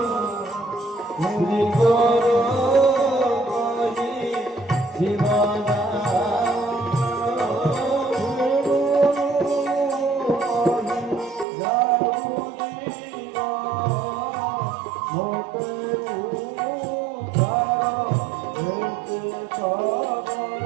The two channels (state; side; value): drops out; left; at 11.5 s